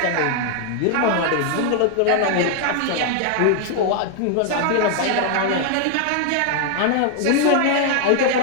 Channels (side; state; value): both; different; correlation 0.00